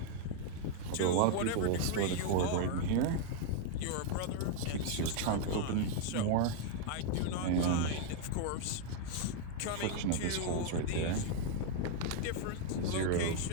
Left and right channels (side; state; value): both; different; correlation 0.00